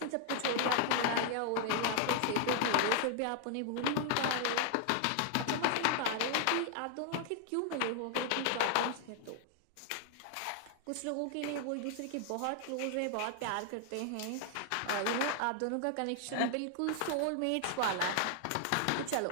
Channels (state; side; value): different; both; correlation 0.00